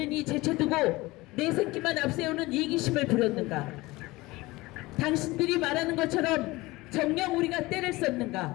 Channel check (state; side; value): quieter; right; 20.8 dB